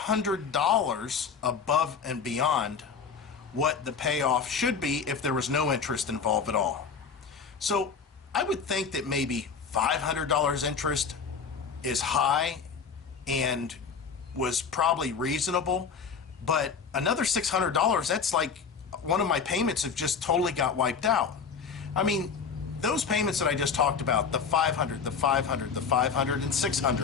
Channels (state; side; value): quieter; right; 5.9 dB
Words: above and beyond what the payoff should be if there was no interest involved at all. So I would think that maybe $500 interest is high and was probably reasonable, but another $600, that's like one of my payments have just totally got wiped out. I mean, those payments that I just talked about, the 500, the 500, the 500, and